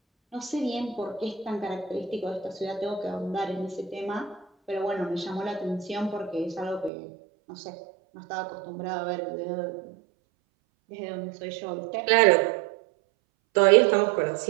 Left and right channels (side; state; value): left; drops out; at 6.9 s